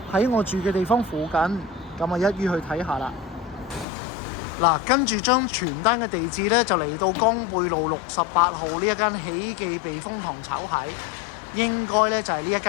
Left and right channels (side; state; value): right; drops out; at 3.9 s